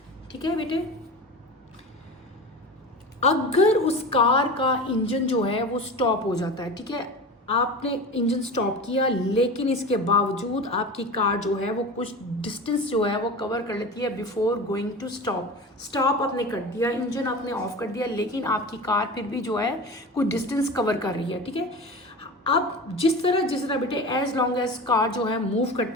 ठीक है बेटे, अगर उस कार का इंजन जो है वो स्टॉप हो जाता है, ठीक है, आपने इंजन स्टॉप किया, लेकिन इसके बावजूद आपकी कार जो है वो कुछ डिस्टेंस जो है वो कवर कर लेती है बिफोर गोइंग टू स्टॉप आपने कर दिया, इंजन आपने ऑफ कर दिया, लेकिन आपकी कार फिर भी जो है कुछ डिस्टेंस कवर कर रही है. ठीक है, अब जिस तरह बेटे एज लॉन्ग एज कार जो है मूव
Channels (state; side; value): normal; both; correlation 0.31